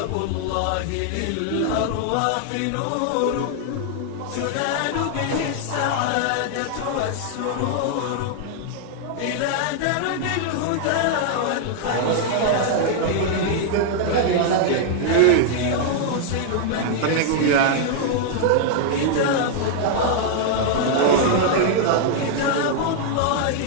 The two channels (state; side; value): different; both; correlation -0.01